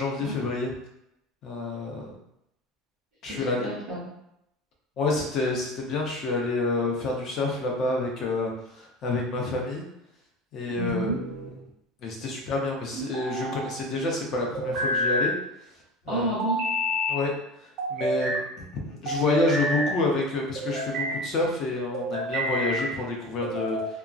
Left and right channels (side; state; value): both; normal; correlation 0.31